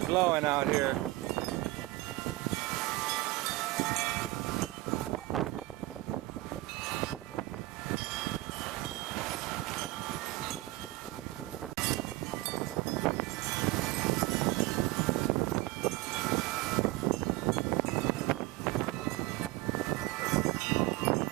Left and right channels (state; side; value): quieter; left; 19.1 dB